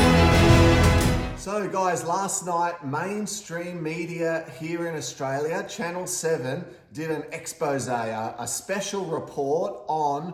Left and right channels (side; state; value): both; identical; correlation 1.00